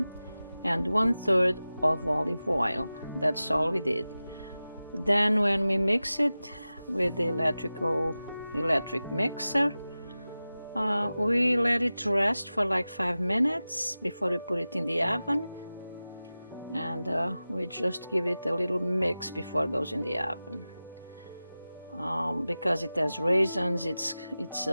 and 1/3 of olive oil. That's all we did. Then when we mix it with the electric mixer, we let it rest for like 5 minutes before we put it in the oven, and we just give it a little mix before it goes in the oven. Because it has raisins, it's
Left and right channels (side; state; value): both; inverted; correlation -0.96